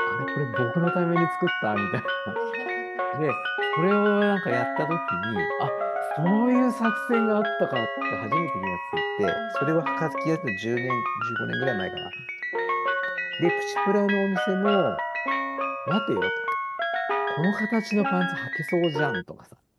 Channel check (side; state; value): both; identical; correlation 1.00